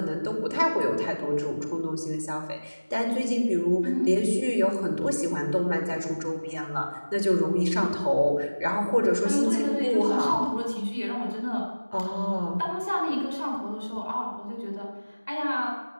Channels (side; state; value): both; inverted; correlation -1.00